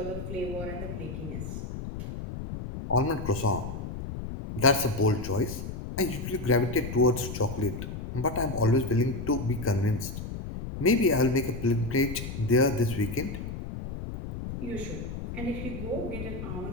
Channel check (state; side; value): noise; left; rumble, 7 dB below the sound